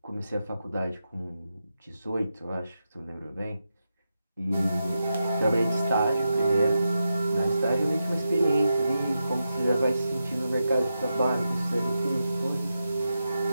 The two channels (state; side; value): inverted; both; correlation -0.88